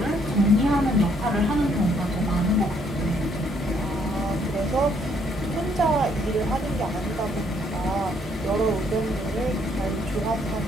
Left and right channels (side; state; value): both; normal; correlation 0.68